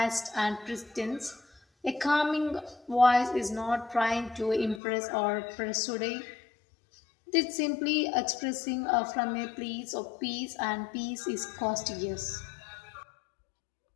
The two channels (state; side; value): drops out; right; at 4.8 s